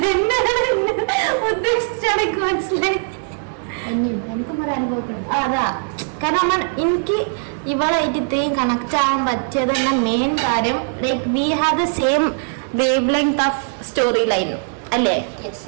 ഉദ്ദേശിച്ചടക്ക് മനസ്സിലായി. എനിക്കും ഒരു അനുഭവപ്പെടും. അതാ കാരണം എനിക്ക് ഇവളായിട്ട് ഇത്രയും കണക്ട് ആവാൻ പറ്റിയത് തന്നെ മെയിൻ കാര്യം, like we have the same wave length of story line അല്ലേ?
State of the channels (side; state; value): left; silent; digital silence